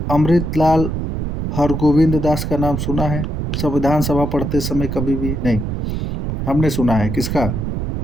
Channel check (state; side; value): noise; right; rumble, 3 dB below the sound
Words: अमृतलाल हरगोविंद दास का नाम सुना है संविधान सभा पढ़ते समय, कभी भी नहीं। हमने सुना है किसका,